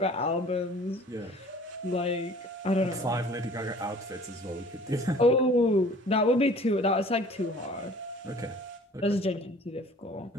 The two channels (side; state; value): both; normal; correlation 0.49